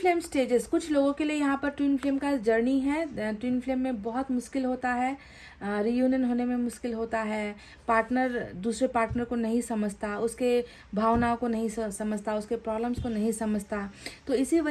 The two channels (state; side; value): identical; both; correlation 1.00